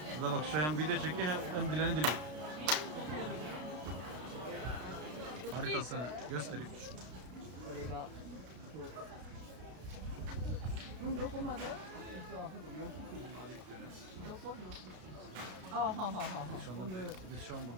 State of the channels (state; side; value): late; left; 33 ms